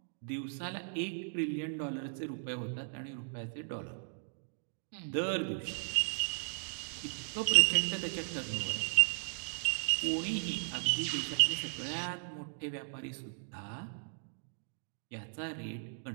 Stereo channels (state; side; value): silent; left; digital silence